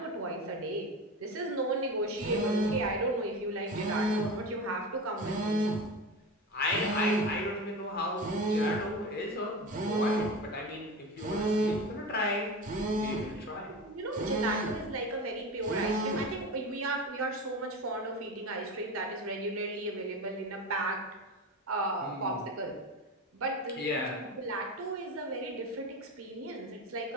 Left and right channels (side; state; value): both; normal; correlation 0.27